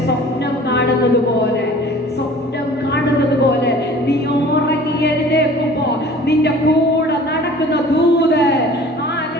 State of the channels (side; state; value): both; normal; correlation 0.46